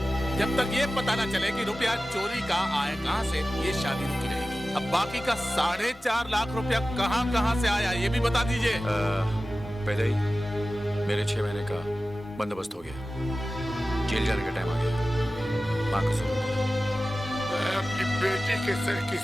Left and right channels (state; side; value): normal; both; correlation 0.95